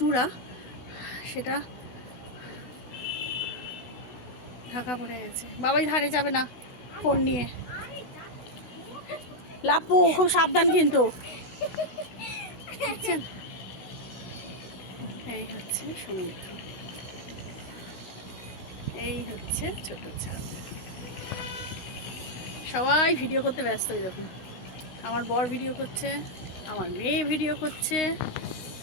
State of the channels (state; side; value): late; right; 16 ms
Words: সেটা ঢাকা পড়ে গেছে। বাবাই ধারে যাবে না ফোন নিয়ে। লাপু খুব সাবধান কিন্তু, বুঝছেন? এই হচ্ছে সমুদ্র, এই হচ্ছে ছোট ছাদ। সবাই ভিডিও করতে ব্যস্ত। দেখুন আমার বর ভিডিও করছে, আমার মেয়ে ভিডিও করছে,